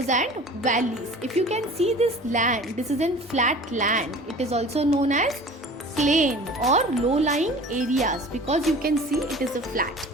and valleys. If you can see this land, this is a flat land. It is also known as plain or low-lying areas because you can see it is a flat.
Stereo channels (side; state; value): both; normal; correlation 0.42